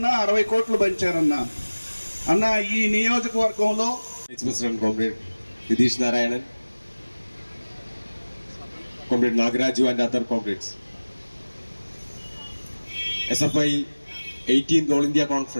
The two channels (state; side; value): inverted; both; correlation -1.00